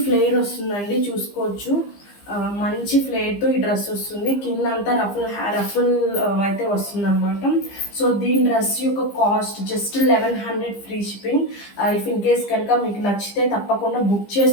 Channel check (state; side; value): late; right; 15 ms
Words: ఫ్లేర్ వస్తుందండి, చూసుకోవచ్చు. మంచి ఫ్లేర్తో ఈ డ్రెస్ వస్తుంది. కింద అంతా రఫుల్ అయితే వస్తుంది అనమాట. సో దీని డ్రెస్ యొక్క cost just 1100 free shipping. If in case కనుక మీకు నచ్చితే తప్పకుండా బుక్